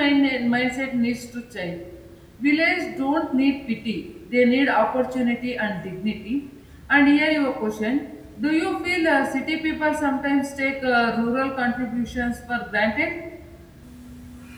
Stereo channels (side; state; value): both; identical; correlation 1.00